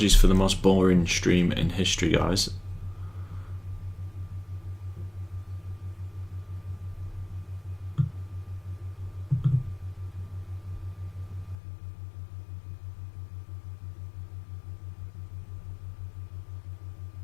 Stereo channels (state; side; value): drops out; right; at 11.6 s